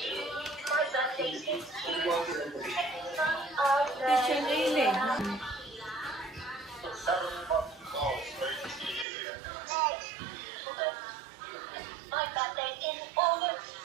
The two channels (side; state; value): left; drops out; at 9.1 s